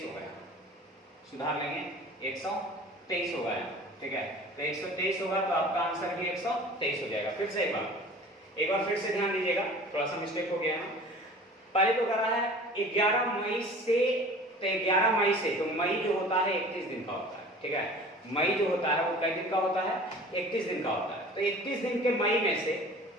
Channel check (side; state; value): both; normal; correlation 0.43